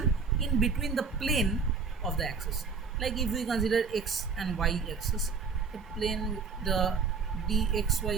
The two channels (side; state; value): left; quieter; 5.2 dB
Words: in between the plane of the axis. Like if we consider x and y axis, the plane, the